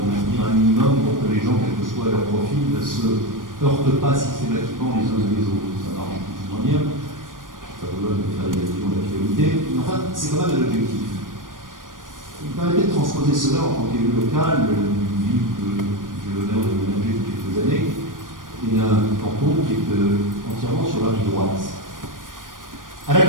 de maintenir un minimum pour que les gens, quel que soit leur profil, ne se heurtent pas systématiquement les uns et les autres. Ça marche plus ou moins bien. Ça vous donne de faire des actions d'actualité. Mais enfin, c'est quand même un objectif. Il me permettait de transposer cela en tant qu'élu local, d'une ville que j'ai l'honneur de manager depuis quelques années, et d'un canton qui est entièrement sur la rive droite. À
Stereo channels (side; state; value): left; late; 0.90 ms